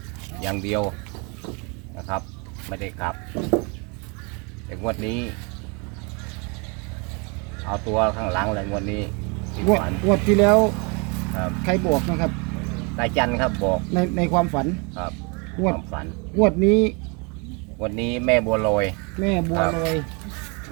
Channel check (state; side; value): quieter; left; 32.0 dB